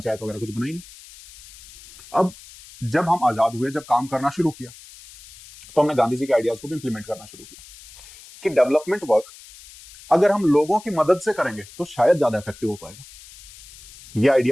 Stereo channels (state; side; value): noise; left; hiss, 20 dB below the sound